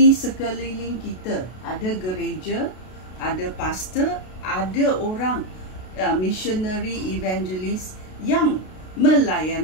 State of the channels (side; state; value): right; late; 32 ms